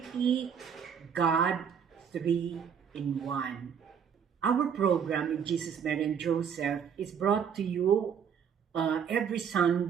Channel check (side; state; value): left; quieter; 7.5 dB